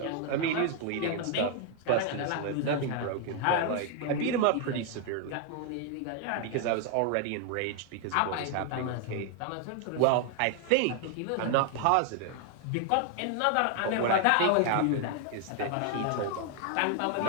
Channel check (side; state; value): both; different; correlation 0.00